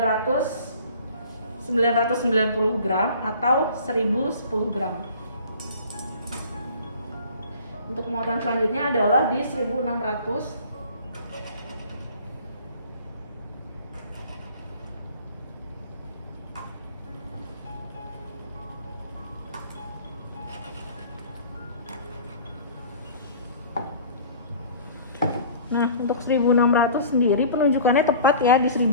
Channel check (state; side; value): inverted; both; correlation -0.46